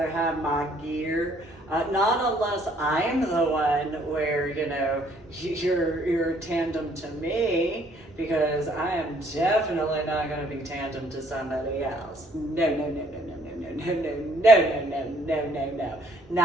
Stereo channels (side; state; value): both; normal; correlation 0.64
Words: have my gear. Not unless I'm the one where, you're tandem to me, because I am definitely not going to be tandem to somebody else. No.